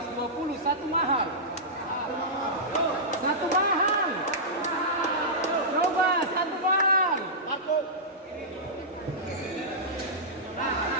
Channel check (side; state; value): both; normal; correlation -0.14